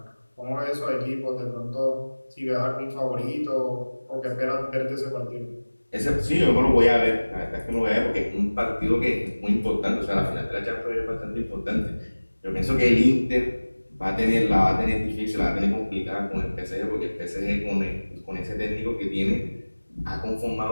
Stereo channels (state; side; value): inverted; both; correlation -1.00